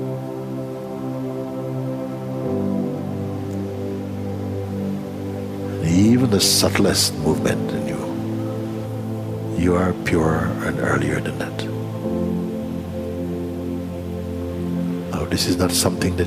And even the subtlest movement in you are purer and earlier than that. Now, this is not something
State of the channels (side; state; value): both; identical; correlation 1.00